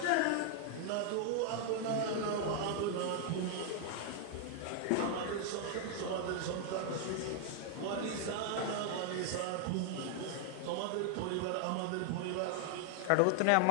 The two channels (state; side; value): different; both; correlation 0.00